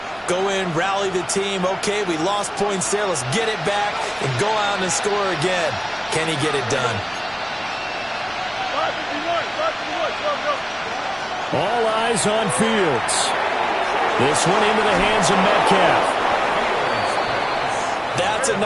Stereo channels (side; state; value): both; identical; correlation 1.00